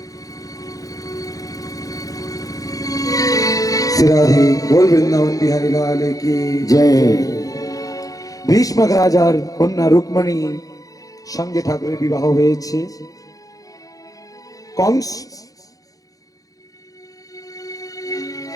শ্রীরাধে बोल वृंदावन बिहारी लाल की जय। ভীষ্মক রাজার কন্যা রুক্মিণী সঙ্গে ঠাকুরের বিবাহ হয়েছে। কংস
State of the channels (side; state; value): right; late; 0.17 ms